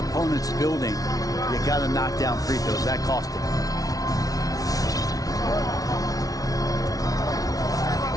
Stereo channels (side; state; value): right; late; 0.18 ms